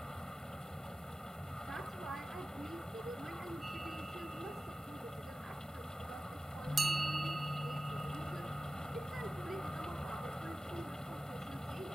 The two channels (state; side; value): normal; both; correlation 0.95